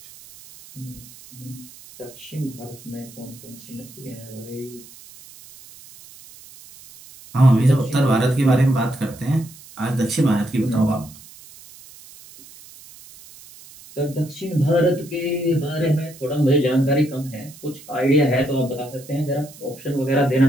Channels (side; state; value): right; noise; hiss, 20 dB below the sound